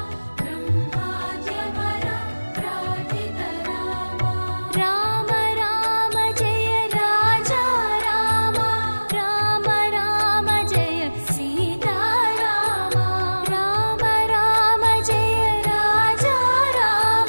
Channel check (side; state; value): both; inverted; correlation -1.00